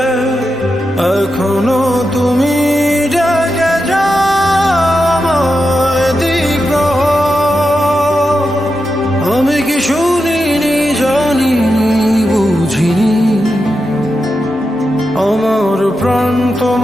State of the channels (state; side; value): normal; both; correlation 0.88